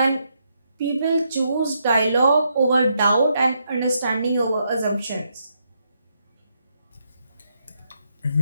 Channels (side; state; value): both; inverted; correlation -0.79